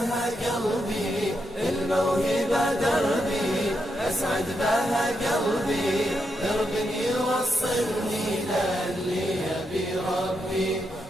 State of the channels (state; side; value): normal; both; correlation 0.83